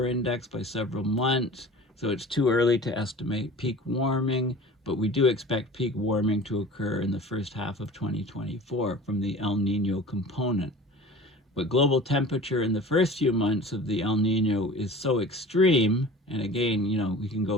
index by several months, so it's too early to estimate peak warming, but we do expect peak warming to occur in the first half of 2024 from the El Nino component. But global temperature in the first few months of the El Nino is so extreme, and again, we can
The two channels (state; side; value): normal; both; correlation 0.40